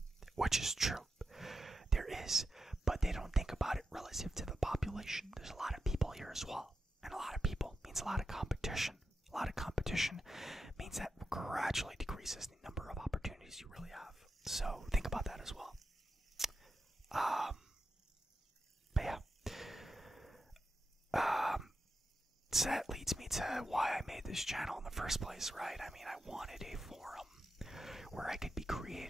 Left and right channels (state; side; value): normal; both; correlation 0.88